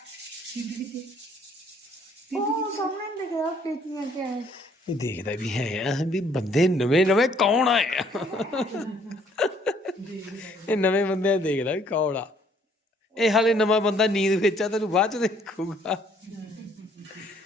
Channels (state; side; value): normal; both; correlation 0.63